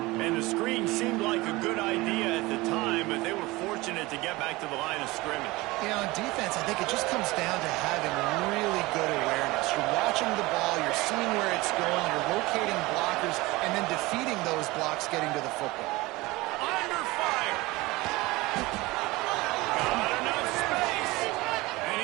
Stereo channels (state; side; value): quieter; left; 21.3 dB